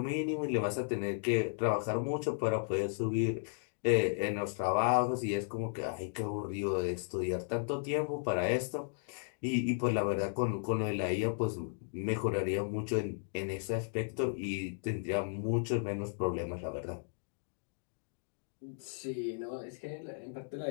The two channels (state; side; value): silent; right; digital silence